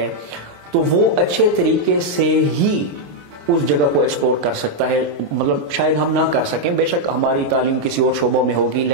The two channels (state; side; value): late; left; 27 ms